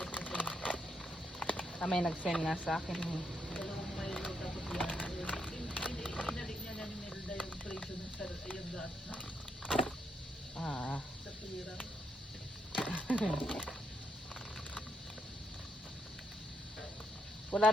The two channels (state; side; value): normal; both; correlation 0.78